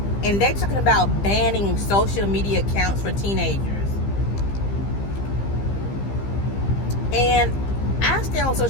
and they're talking about banning social media accounts for teenagers. And I stay on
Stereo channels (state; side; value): late; right; 15 ms